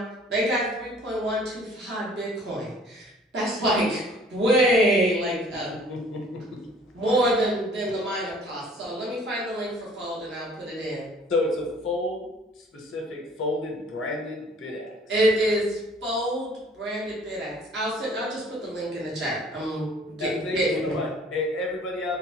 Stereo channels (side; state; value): both; normal; correlation 0.54